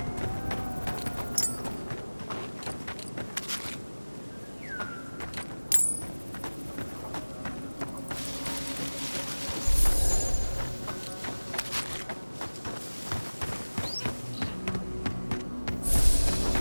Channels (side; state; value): both; inverted; correlation -1.00